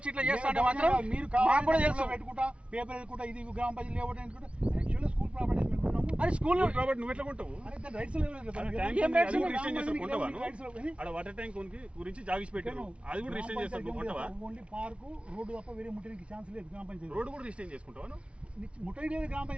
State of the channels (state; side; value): late; left; 0.060 ms